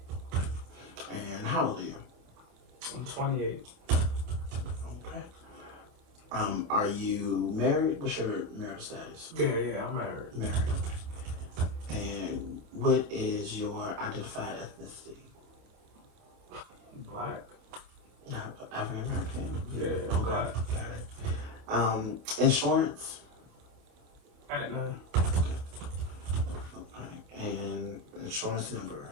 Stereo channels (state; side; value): late; left; 27 ms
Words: And how old are you? I'm 28. Okay. Are you married? What's your marital status? Yeah, I'm married. Married. And what is your identified ethnicity? Black. African American? Yeah, okay. Black. Got it. Insurance? Aetna. Okay. And insurance number?